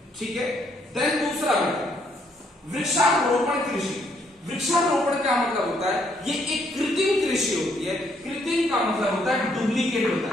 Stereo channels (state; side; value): normal; both; correlation 0.70